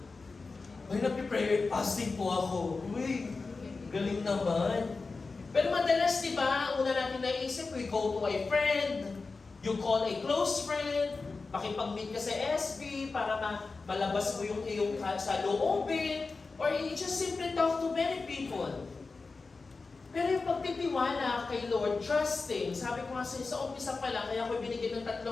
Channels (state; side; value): quieter; right; 4.1 dB